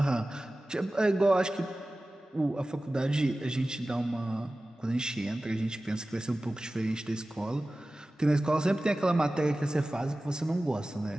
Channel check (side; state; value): both; normal; correlation 0.96